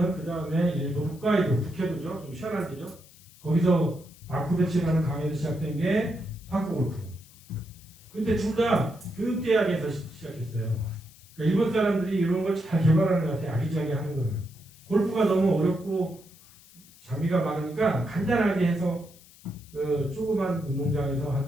그 다음에 일본 홋카이도 북해도죠. 좀 시원한 데죠. 거기서 마쿠베치라는 강의에서 시작된 게 파크 골프. 근데 둘 다 교육대학에서 시작했어요. 그러니까 일본 사람들이 이런 걸 잘 개발하는 것 같아요. 아기자기 하는 거는. 골프가 너무 어렵고 장비가 많으니까 간단하게 해서 조그만 운동장에서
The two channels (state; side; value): noise; left; hiss, 24 dB below the sound